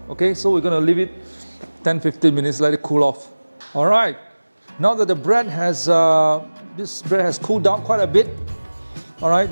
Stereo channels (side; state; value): both; inverted; correlation -1.00